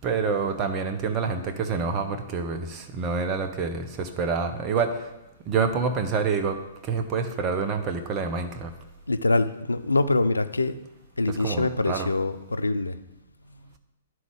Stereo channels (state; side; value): inverted; both; correlation -0.43